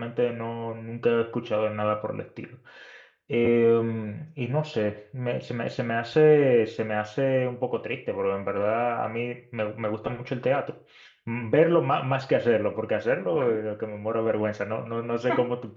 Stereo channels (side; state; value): both; identical; correlation 1.00